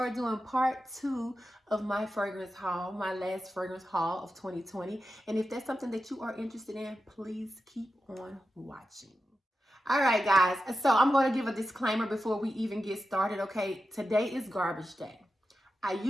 doing part 2 of my fragrance haul, my last fragrance haul of 2020. And if that's something that you are interested in, please keep on watching. All right, guys. So I'm going to give a disclaimer before we even get started, okay? Today is garbage day. I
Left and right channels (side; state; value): both; normal; correlation 0.91